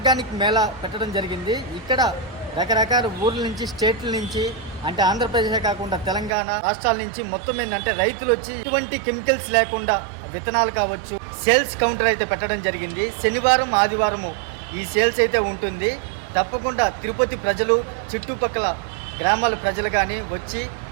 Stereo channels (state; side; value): drops out; left; at 6.3 s